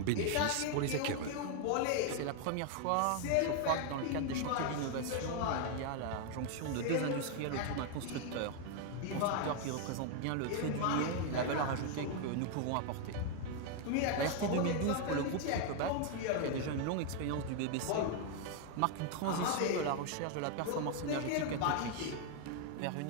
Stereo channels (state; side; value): different; both; correlation 0.00